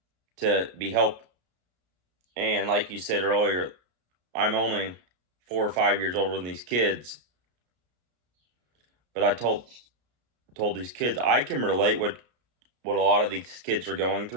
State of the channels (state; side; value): late; left; 33 ms